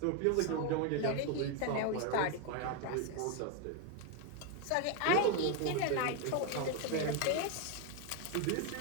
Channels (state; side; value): different; both; correlation 0.01